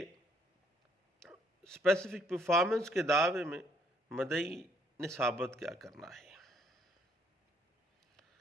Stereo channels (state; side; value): normal; both; correlation 0.67